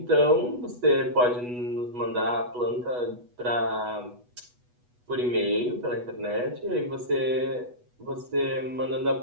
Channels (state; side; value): late; left; 8.2 ms